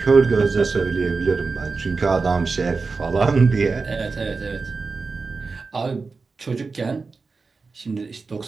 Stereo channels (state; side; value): quieter; left; 4.3 dB